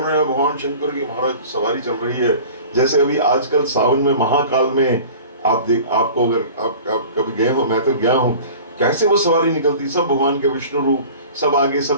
हैं, भगवान शंकर की महाराज सवारी चल रही है। जैसे अभी आजकल सावन में महाकाल में आपको अगर आप कभी गए हो, मैं तो गया हूँ, कैसे वो सवारी निकलती, सब भगवान के विष्णु रूप, सब आगे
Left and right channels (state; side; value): inverted; both; correlation -0.41